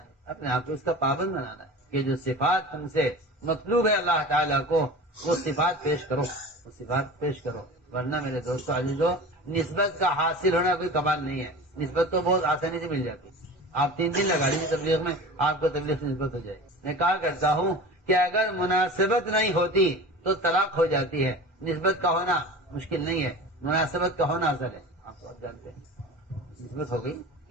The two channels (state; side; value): normal; both; correlation 0.35